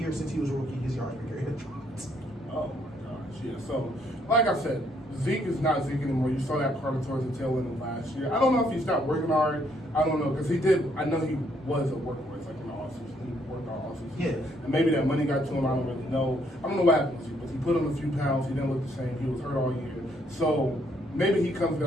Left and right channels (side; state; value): both; normal; correlation 0.69